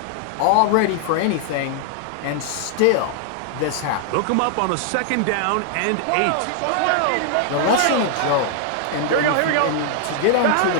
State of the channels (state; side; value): different; both; correlation 0.00